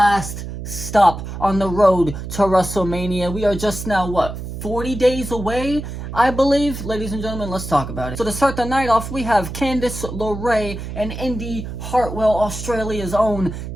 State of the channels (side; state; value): right; noise; hum, 8 dB below the sound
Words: stop on the road to WrestleMania. We are just now, 40 days away, I believe? Ladies and gentlemen, let's talk about it. So to start the night off, we have Candice LeRae and Indy Hartwell, Australia's own,